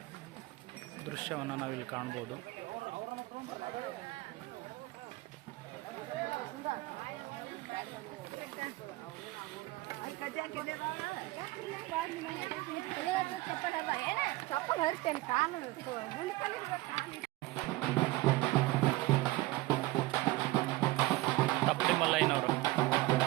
ದೃಶ್ಯವನ್ನು ನಾವಿಲ್ಲಿ ಕಾಣ್ಬೋದು. ತಪ್ಪಲಿ ಮಲ್ಲಯ್ಯನವರು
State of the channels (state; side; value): quieter; left; 19.4 dB